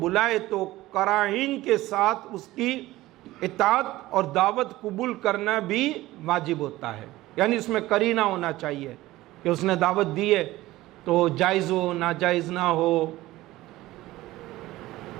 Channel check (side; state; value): left; quieter; 17.3 dB